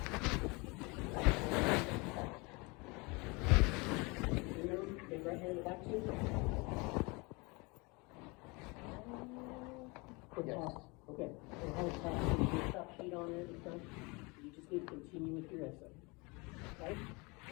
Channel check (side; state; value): right; quieter; 27.4 dB